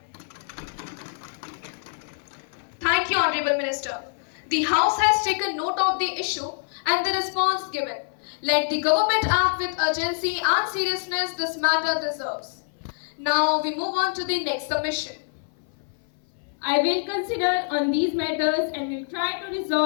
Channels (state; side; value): silent; right; 57 dB below the other